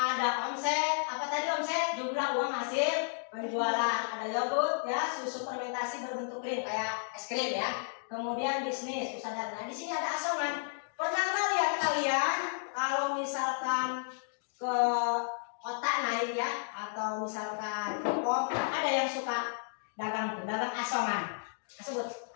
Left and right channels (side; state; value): right; silent; digital silence